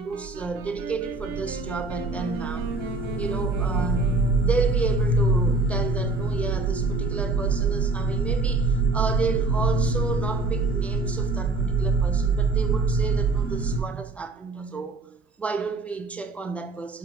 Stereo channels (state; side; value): quieter; left; 3.4 dB